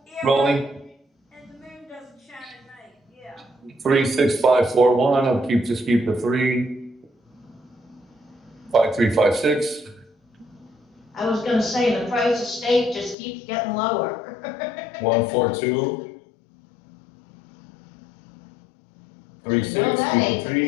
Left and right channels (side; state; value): right; drops out; at 13.2 s